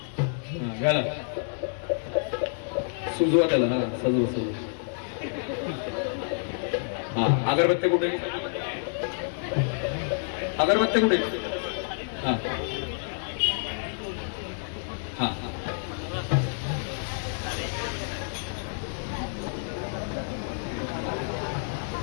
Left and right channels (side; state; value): right; silent; digital silence